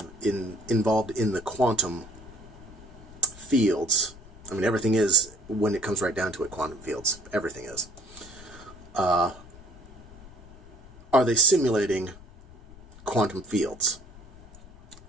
in the quantum fields, I mean, everything is, when it comes right down to it, quantum fields. Everything is. Are they simulating quantum fields?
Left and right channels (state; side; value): noise; left; rumble, 20 dB below the sound